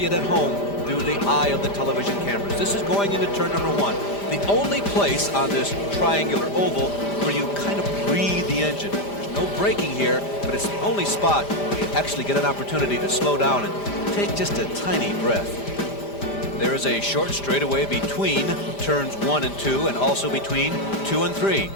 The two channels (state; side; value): late; right; 5.0 ms